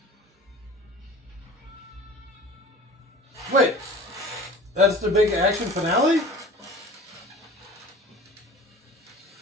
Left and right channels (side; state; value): both; normal; correlation 0.42